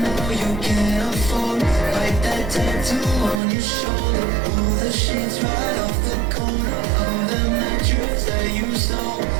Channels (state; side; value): drops out; left; at 3.4 s